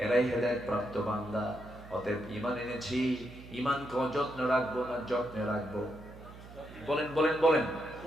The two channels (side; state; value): right; noise; hum, 17 dB below the sound